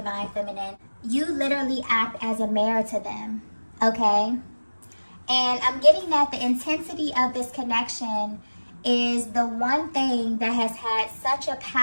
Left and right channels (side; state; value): both; inverted; correlation -1.00